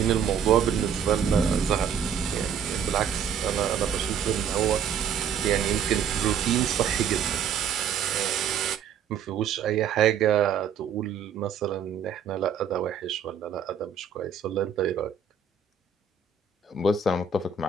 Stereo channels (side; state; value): left; quieter; 7.3 dB